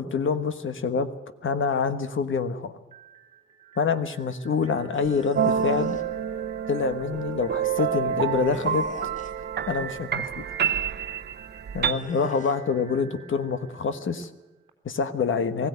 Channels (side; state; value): both; normal; correlation 0.01